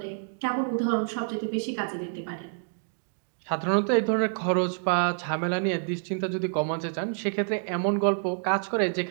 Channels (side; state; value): left; silent; digital silence